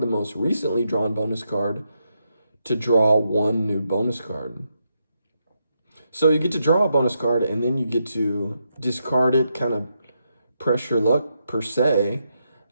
the most recently drawn bonus card to draw 1 new bonus card. So you get to draw a bonus card, and then you get to discard it, kind of press your luck per se,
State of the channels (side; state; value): both; inverted; correlation -0.82